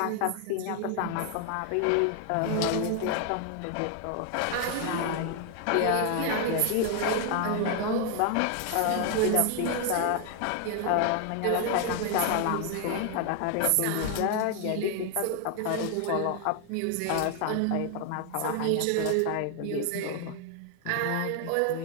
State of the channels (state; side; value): different; both; correlation 0.00